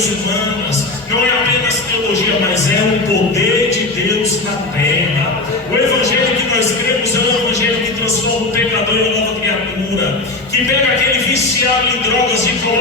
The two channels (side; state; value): right; quieter; 3.1 dB